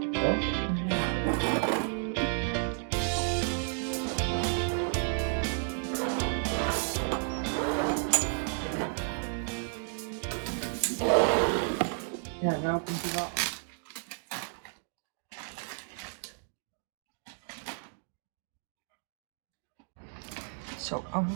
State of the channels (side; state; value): left; silent; 56 dB below the other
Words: Zo. Ja, nou komt hij wel. So